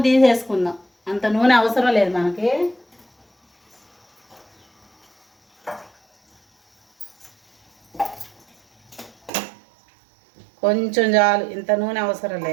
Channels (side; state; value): left; drops out; at 9.3 s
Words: తీసేసుకుందాం. అంత నూనె అవసరం లేదు మనకి. కొంచెం చాలు, ఇంత నూనె అవసరం